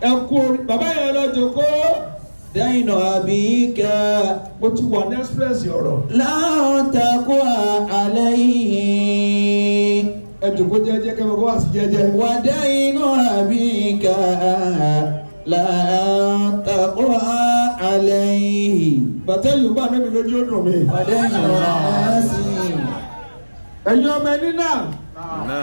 ẹ kú orí bàbá yẹn lọ jókòó. دين أبيك mo ti wà ní express ọ̀rọ̀. لن تقوى عليه. ẹ jókòó jẹ́jẹ́ kẹ́mi kó wá sí jẹ́jẹ́. ودين أبيك لن تقوى عليه. bàtẹ́ yorùbá níbi lójú ó dùn mí. ودين الناس ẹ̀yin ọmọ ẹni náà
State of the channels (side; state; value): both; inverted; correlation -1.00